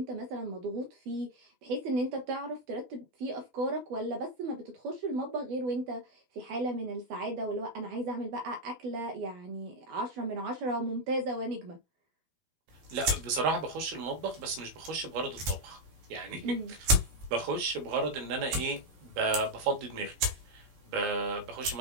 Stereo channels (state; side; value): late; left; 12 ms